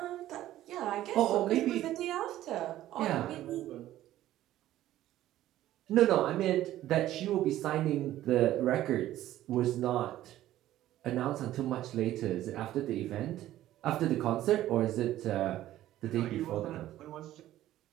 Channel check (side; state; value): left; quieter; 13.9 dB